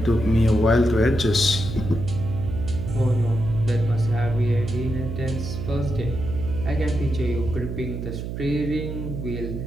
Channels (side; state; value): right; noise; hum, 6 dB below the sound